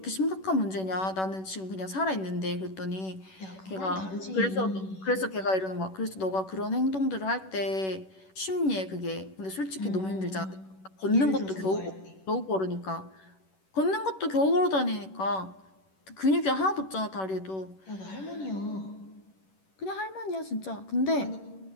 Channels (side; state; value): right; late; 11 ms